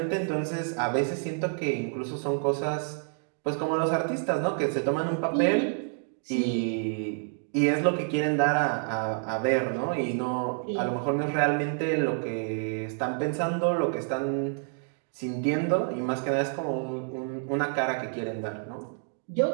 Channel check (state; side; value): silent; left; 59 dB below the other